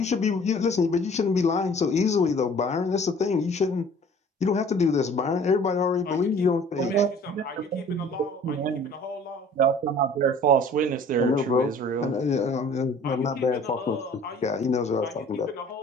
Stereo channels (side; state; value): both; normal; correlation 0.50